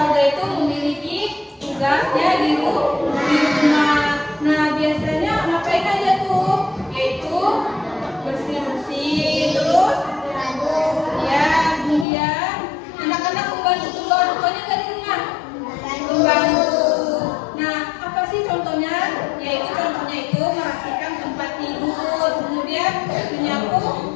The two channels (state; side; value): drops out; right; at 12.1 s